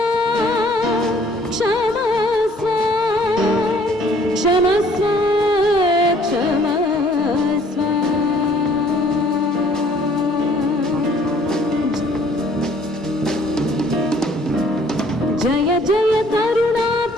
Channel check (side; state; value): both; normal; correlation 0.59